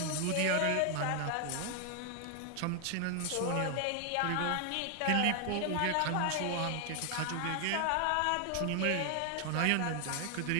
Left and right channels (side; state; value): both; different; correlation 0.00